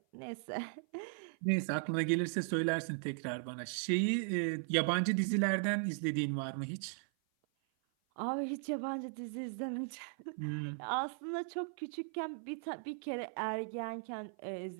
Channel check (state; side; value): silent; left; 53 dB below the other